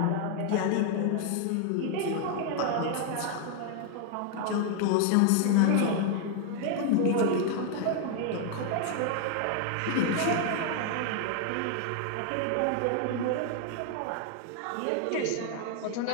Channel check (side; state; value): both; different; correlation 0.00